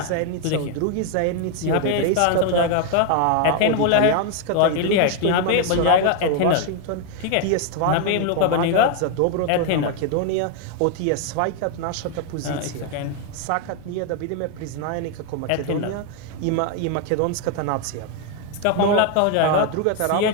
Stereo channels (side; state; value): both; different; correlation 0.01